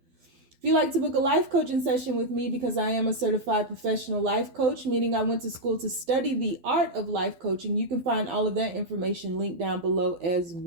you'd like to book a life coaching session with me, because I am a certified professional life coach, meaning I went to school to study the art of life coaching, you can find all of that information linked down below as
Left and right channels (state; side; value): late; left; 12 ms